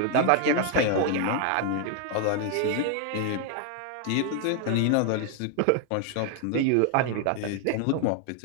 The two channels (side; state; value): both; different; correlation 0.00